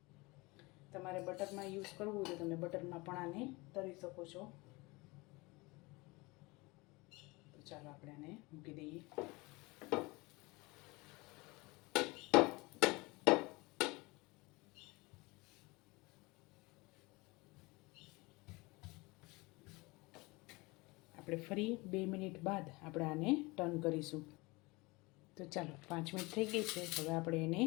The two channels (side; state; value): right; quieter; 24.2 dB